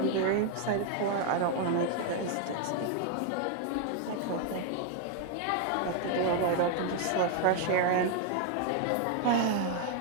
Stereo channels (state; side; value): different; both; correlation 0.00